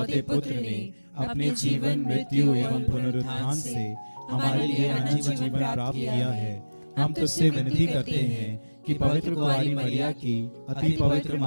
पुत्र ने अपने जीवन, मृत्यु एवं पुनरुत्थान से हमारे लिए अनंत जीवन प्राप्त किया है, हम तुझसे विनती करते हैं कि पवित्र कुंवारी मरिया की अति पवित्र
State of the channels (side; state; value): both; inverted; correlation -1.00